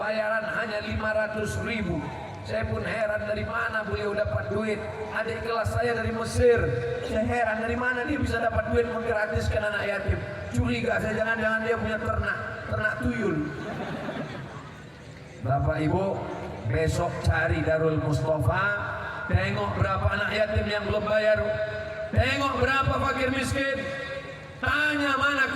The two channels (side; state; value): both; identical; correlation 1.00